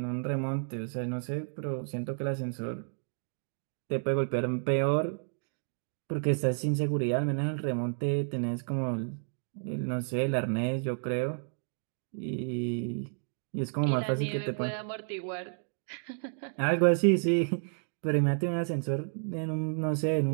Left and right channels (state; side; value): silent; left; digital silence